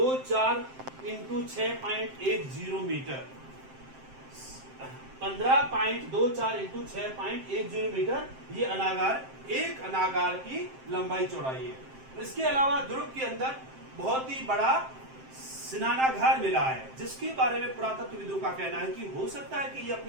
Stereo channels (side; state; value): left; late; 7.6 ms